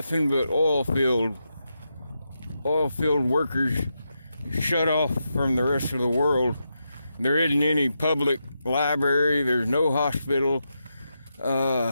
but oil field workers shut off from the rest of the world. There isn't any public library, there's no hospital.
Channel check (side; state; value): both; inverted; correlation -0.86